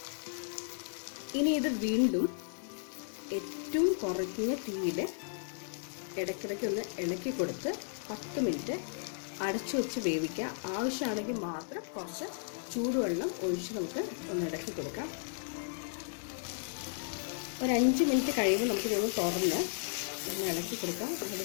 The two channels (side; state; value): right; silent; digital silence